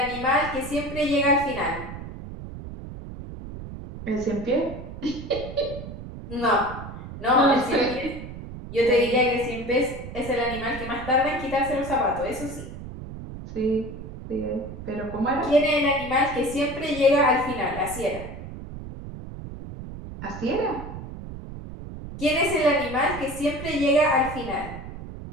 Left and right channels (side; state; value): right; noise; rumble, 11 dB below the sound